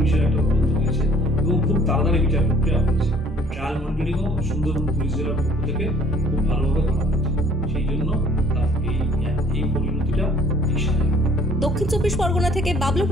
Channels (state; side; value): normal; both; correlation 0.57